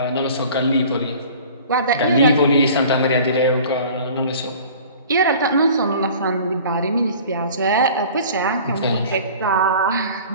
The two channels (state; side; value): inverted; both; correlation -0.45